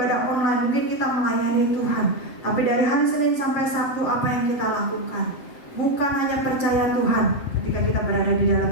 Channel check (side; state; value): right; late; 7.8 ms